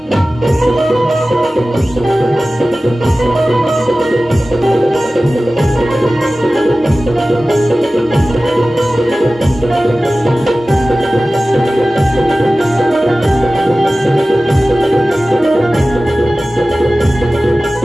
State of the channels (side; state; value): both; normal; correlation 0.96